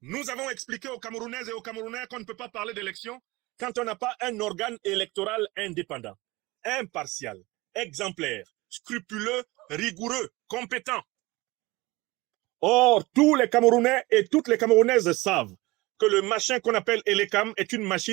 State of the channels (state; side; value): quieter; left; 21.8 dB